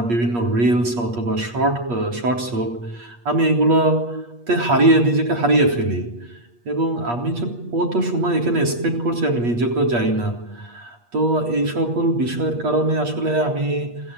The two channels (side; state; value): left; late; 8.4 ms